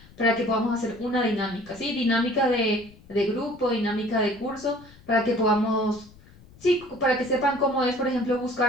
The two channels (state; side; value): noise; left; rumble, 24 dB below the sound